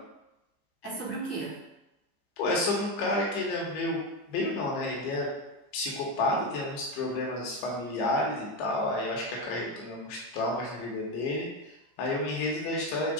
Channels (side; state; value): right; late; 15 ms